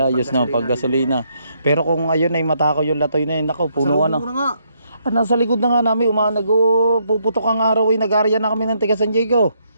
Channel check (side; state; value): both; inverted; correlation -0.73